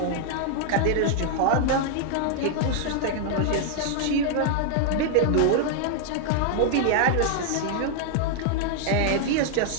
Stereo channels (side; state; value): both; different; correlation 0.00